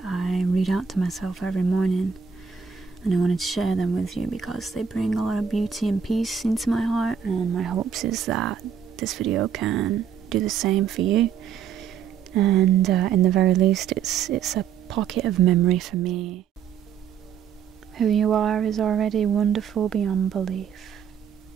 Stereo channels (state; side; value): quieter; left; 7.5 dB